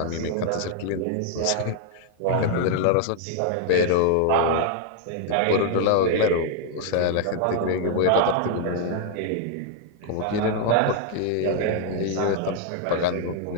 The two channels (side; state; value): both; different; correlation 0.00